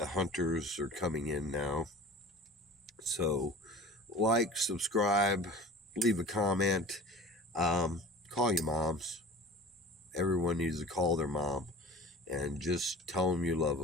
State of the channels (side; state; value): both; normal; correlation 0.38